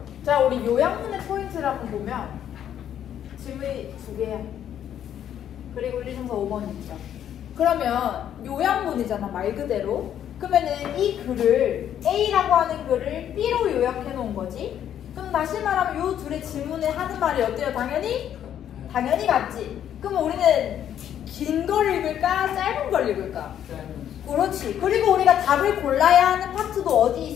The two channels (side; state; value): right; quieter; 10.1 dB